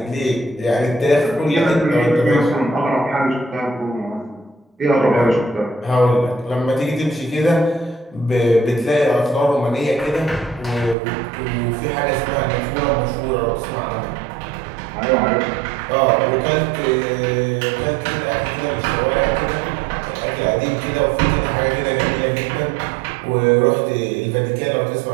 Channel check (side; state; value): left; drops out; at 11.0 s